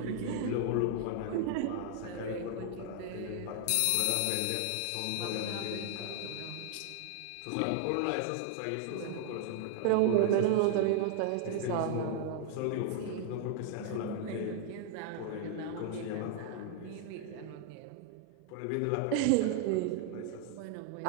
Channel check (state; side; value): different; both; correlation 0.00